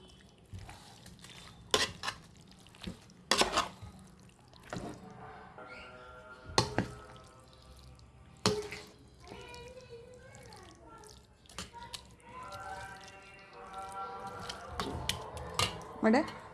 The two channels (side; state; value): both; identical; correlation 1.00